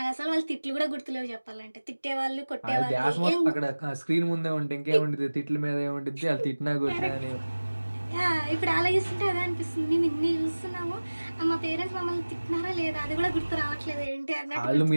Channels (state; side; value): inverted; both; correlation -1.00